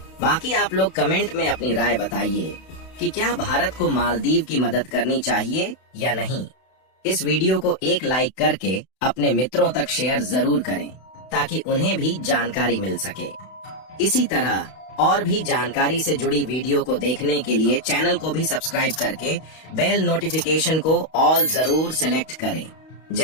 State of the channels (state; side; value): late; right; 32 ms